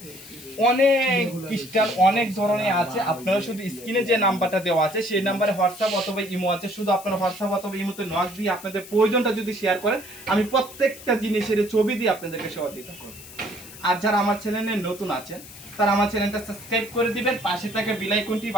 অনেক ক্রিস্টাল অনেক ধরনের আছে, আপনারা শুধু স্ক্রিনে যে নাম্বারটা দেওয়া আছে সেই নাম্বারে হোয়াটসঅ্যাপ অথবা ইমো আছে, শুধু আপনারা হোয়াটসঅ্যাপ অথবা ইমোতে নক দিয়ে আপনাদের প্রয়োজনটা যদি শেয়ার করেন, আমি প্রত্যেকটা জিনিসের ছবি দিয়ে আপনাদেরকে সহযোগিতা করব। আর যারা আমার চ্যানেলে নতুন আছেন তারা আমার চ্যানেলটা সাবস্ক্রাইব করে দিবেন, পাশে থাকা বেল আইকনটি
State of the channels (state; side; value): noise; left; hiss, 17 dB below the sound